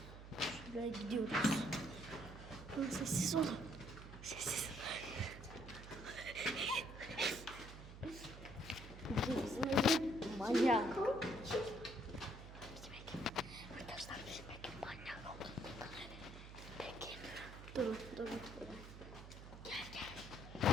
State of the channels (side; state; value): right; noise; hum, 13 dB below the sound